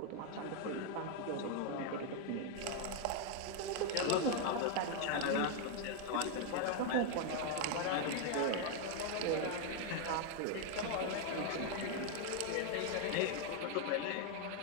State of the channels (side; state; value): both; different; correlation 0.01